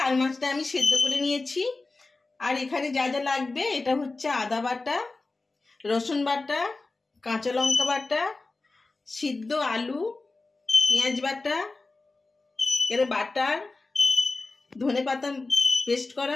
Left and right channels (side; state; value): right; quieter; 3.5 dB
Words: আর মাছটা আমি সেদ্ধ করে নিয়েছি। আর এখানে যা যা লাগবে, এটা হচ্ছে আদা বাটা, রসুন বাটা, কাঁচা লঙ্কা বাটা, সিদ্ধ আলু, পেঁয়াজ বাটা, এর বাটার, ধনে পাতা পেস্ট